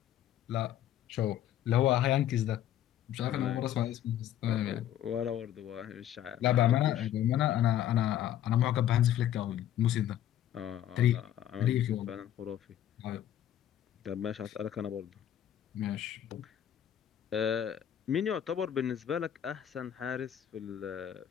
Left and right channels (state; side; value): quieter; right; 11.3 dB